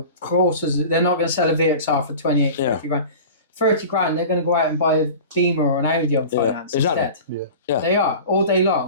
they're not going to sell a VXR for 28, 50 grand. 30 grand, they're going to go out and buy a Beamer or an Audi on finance instead. Yeah. They are, all day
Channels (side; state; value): both; inverted; correlation -0.37